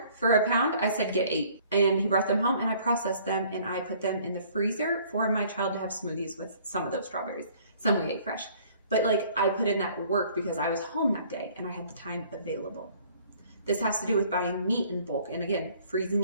for a pound. I said get 8. And he brought them home and I processed them and I put them in the freezer for my child to have smoothies with some of those strawberries. Some we ate fresh. But I put in that work because I was home that day and I had the time available. This has to do with buying meat in bulk and again, freezing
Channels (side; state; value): both; inverted; correlation -0.57